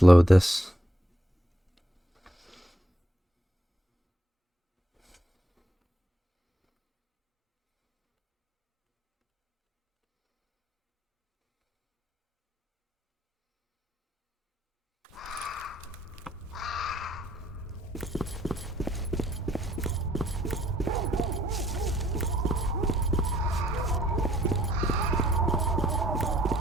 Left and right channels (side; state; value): both; normal; correlation 0.68